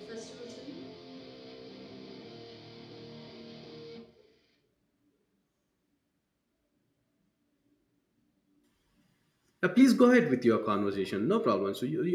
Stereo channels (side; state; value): both; identical; correlation 1.00